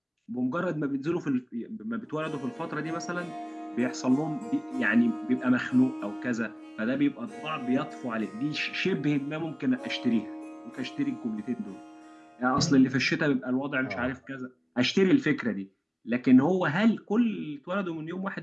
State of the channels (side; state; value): both; identical; correlation 1.00